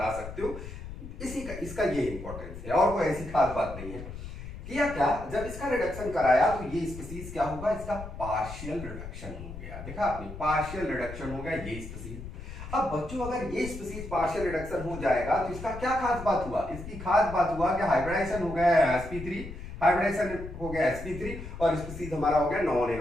सकते हो। इसका ये इंपॉर्टेंस है, और कोई ऐसी खास बात नहीं है। किया क्या, जब इसका रिडक्शन कराया तो ये स्पीसीज क्या होगा, इसका पार्शियल रिडक्शन हो गया। देखा आपने, पार्शियल रिडक्शन हो गया ये स्पीसीज। अब बच्चों अगर ये स्पीसीज पार्शियल रिडक्शन हो जाएगा तो इसका क्या खास बात हुआ, इसकी खास बात हुआ कि हाइब्रिडाइजेशन हो गया sp3, हाइब्रिडाइजेशन हो गया sp3, और स्पीसीज हमारा हो गया नॉन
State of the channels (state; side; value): noise; left; rumble, 10 dB below the sound